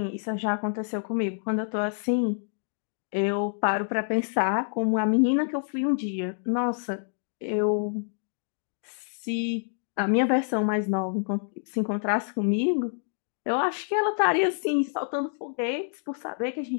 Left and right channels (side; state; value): right; silent; digital silence